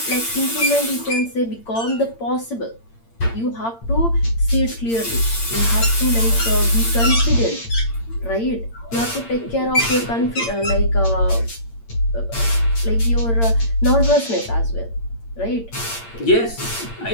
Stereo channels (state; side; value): late; right; 8.8 ms